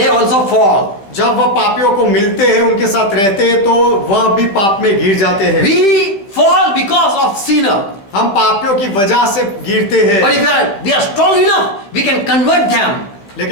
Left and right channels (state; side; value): late; right; 15 ms